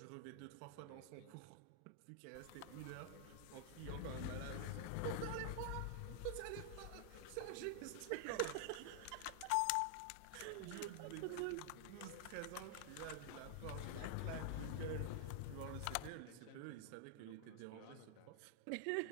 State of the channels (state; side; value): different; both; correlation 0.00